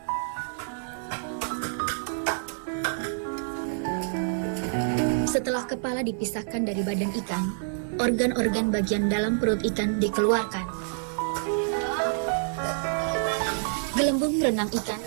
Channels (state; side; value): silent; left; digital silence